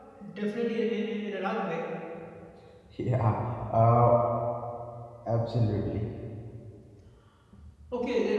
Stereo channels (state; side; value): identical; both; correlation 1.00